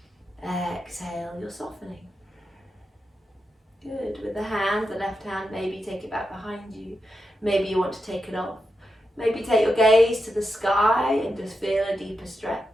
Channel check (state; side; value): normal; both; correlation 0.87